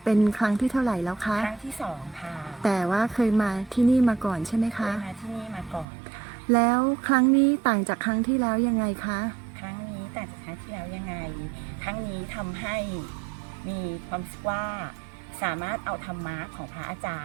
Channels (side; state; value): left; drops out; at 5.9 s